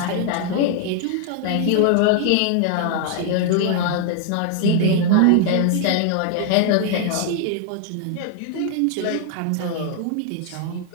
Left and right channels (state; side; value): different; both; correlation 0.00